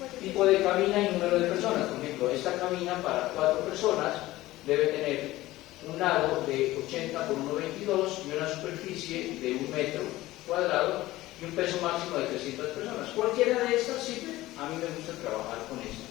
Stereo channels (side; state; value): right; quieter; 17.1 dB